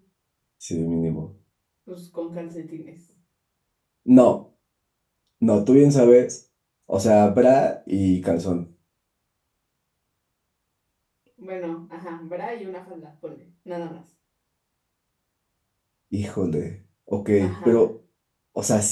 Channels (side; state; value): both; identical; correlation 1.00